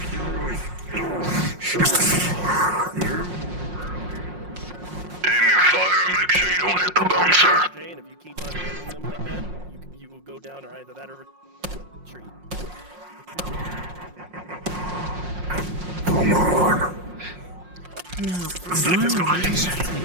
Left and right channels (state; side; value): late; left; 5.6 ms